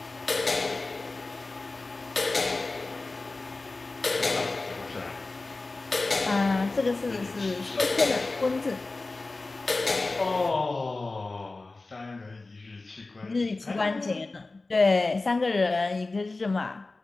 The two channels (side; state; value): right; quieter; 3.4 dB